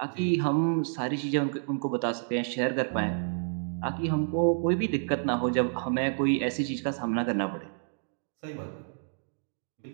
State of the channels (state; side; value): silent; left; digital silence